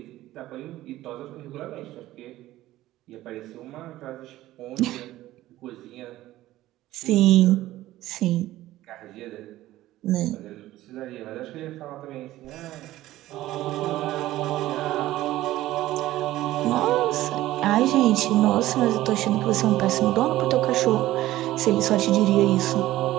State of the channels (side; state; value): left; quieter; 15.6 dB